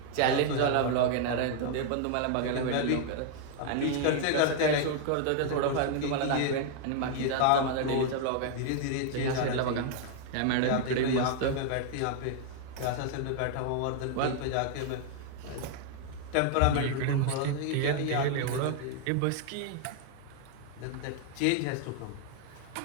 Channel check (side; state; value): both; different; correlation 0.00